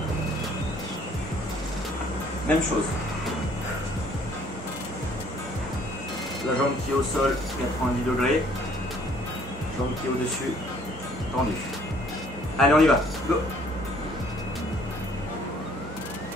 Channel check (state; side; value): normal; both; correlation 0.59